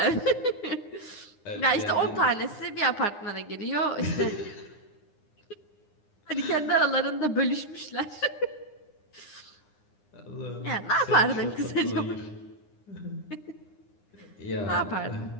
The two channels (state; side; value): late; right; 9.8 ms